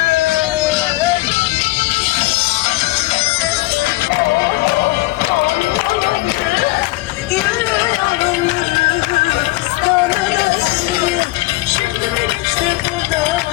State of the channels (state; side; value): quieter; right; 20.7 dB